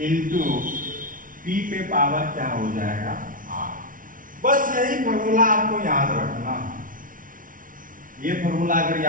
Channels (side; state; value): left; late; 0.39 ms